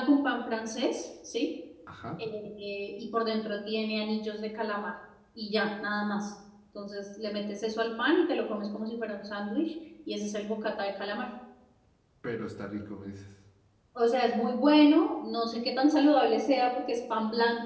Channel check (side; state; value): both; identical; correlation 1.00